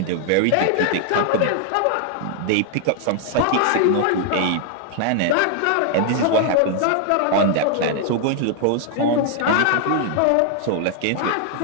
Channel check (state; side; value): different; both; correlation 0.00